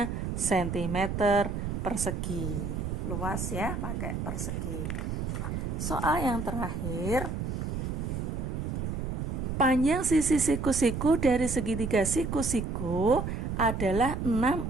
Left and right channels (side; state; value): right; noise; rumble, 3 dB below the sound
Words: sentimeter persegi. Luas ya, pakai persegi. Soal yang terakhir, Panjang sisi siku-siku dari segitiga siku-siku adalah